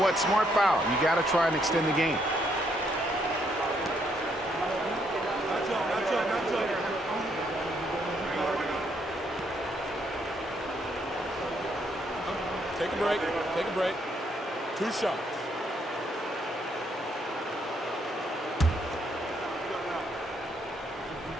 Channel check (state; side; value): normal; both; correlation 0.72